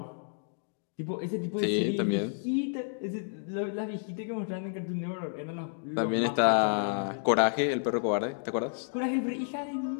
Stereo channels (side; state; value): right; silent; digital silence